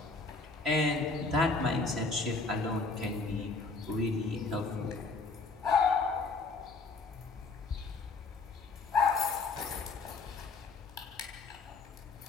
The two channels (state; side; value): quieter; right; 3.9 dB